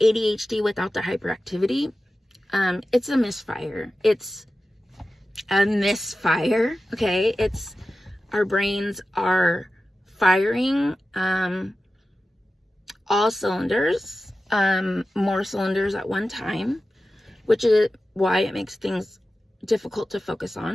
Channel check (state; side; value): normal; both; correlation 0.94